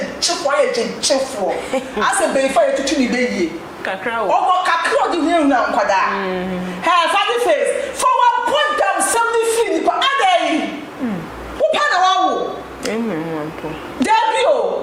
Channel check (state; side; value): identical; both; correlation 1.00